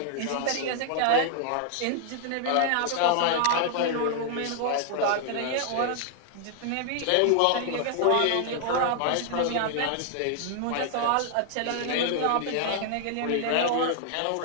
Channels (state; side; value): different; both; correlation 0.00